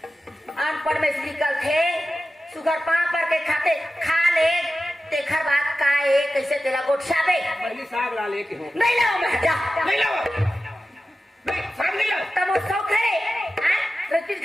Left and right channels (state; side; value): normal; both; correlation 0.93